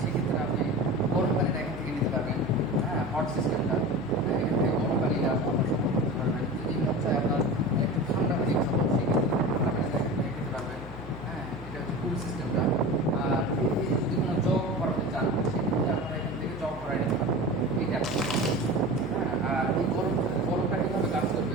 সেক্ষেত্রে আপনি গরম পানিটা এখান থেকে নিতে পারবেন। হ্যাঁ, হট সিস্টেমটা এখান থেকে গরম পানিটা আপনার সংগ্রহ করতে পারবেন। যদি মন চায় আপনার একটু ঠান্ডা পানি খাবো সেক্ষেত্রে ঠান্ডা পানিটা এখান থেকে খেতে পারবেন। হ্যাঁ, এটা হচ্ছে কুল সিস্টেমটা। আর এই যদি কোনো জগ করাতে চান সেক্ষেত্রে আপনারা এখান থেকে জগ করাই নিতে পারবেন এইটা। হ্যাঁ, আর এই গরমটা কীভাবে কাজ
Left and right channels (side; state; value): left; noise; hum, 14 dB below the sound